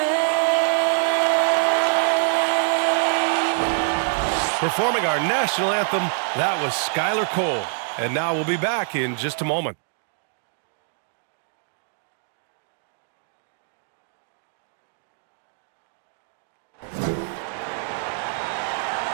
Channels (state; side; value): silent; left; digital silence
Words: Performing our national anthem, that was Skylar Cole. And now we'll be back in just a moment.